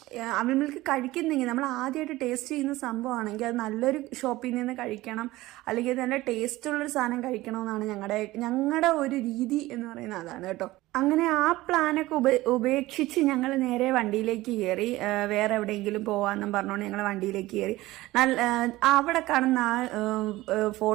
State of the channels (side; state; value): left; quieter; 18.0 dB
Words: അവിൽ മിൽക്ക് കഴിക്കുന്നെങ്കിൽ നമ്മൾ ആദ്യമായിട്ട് ടേസ്റ്റ് ചെയ്യുന്ന സംഭവമാണെങ്കിൽ അത് നല്ലൊരു ഷോപ്പിൽ നിന്ന് കഴിക്കണം, അല്ലെങ്കിൽ നല്ല ടേസ്റ്റുള്ളൊരു സാധനം കഴിക്കണമെന്നാണ് ഞങ്ങളുടെ ഒരു രീതി എന്ന് പറയുന്നത് അതാണ് കേട്ടോ. അങ്ങനെ ആ പ്ലാനൊക്കെ ഉപേക്ഷിച്ച് ഞങ്ങൾ നേരെ വണ്ടിയിലേക്ക് കയറി. വേറെ എവിടെയെങ്കിലും പോവാന്നും പറഞ്ഞുകൊണ്ട് ഞങ്ങൾ വണ്ടിയിലേക്ക് കയറി. അവിടെ കാണുന്ന ആ